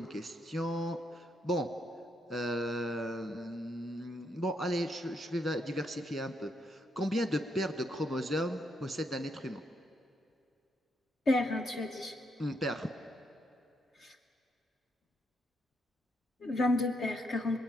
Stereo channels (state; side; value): normal; both; correlation 0.77